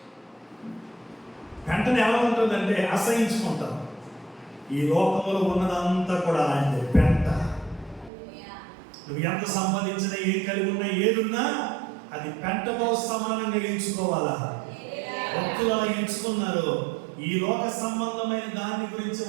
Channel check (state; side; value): drops out; left; at 8.1 s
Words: పెంటను ఎలా ఉంటుందంటే అసహించుకుంటాం. ఈ లోకంలో ఉన్నదంతా కూడా అలాంటి పెంట. నువ్వు ఎంత సంపాదించినా, ఏం కలిగి ఉన్నా, ఏదున్నా అది పెంటతో సమానంగా ఎంచుకోవాలా. భక్తులు అలా ఎంచుకున్నారు. ఈ లోక సంబంధమైన దాని గురించి